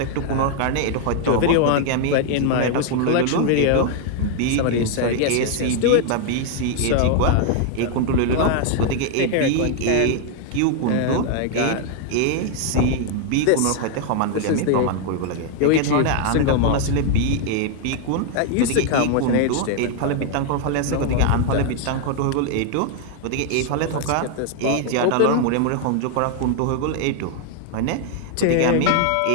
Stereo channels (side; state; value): both; different; correlation 0.00